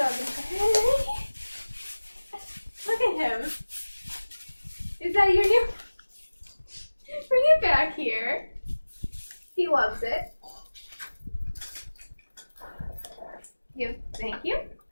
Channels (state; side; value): inverted; both; correlation -1.00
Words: in Henry. Look at him. Is that your new? Bring it back here. He loves it. Thank you.